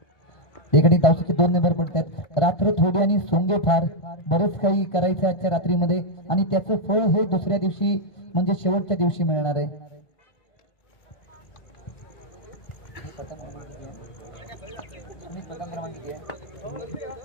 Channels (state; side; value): late; right; 1.5 ms